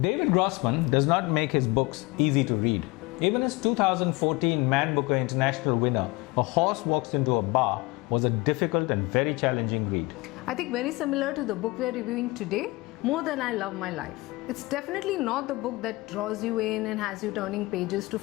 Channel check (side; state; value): right; quieter; 23.0 dB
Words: David Grossman does not make his books easy to read. Even his 2014 Man Booker International winner, A Horse Walks Into a Bar, was a difficult and very challenging read. I think very similar to the book we are reviewing today, More Than I Love My Life. It's definitely not the book that draws you in and has you turning pages to